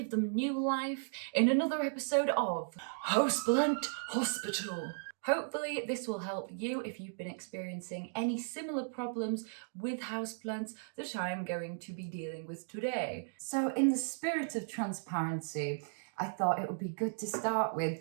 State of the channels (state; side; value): silent; left; digital silence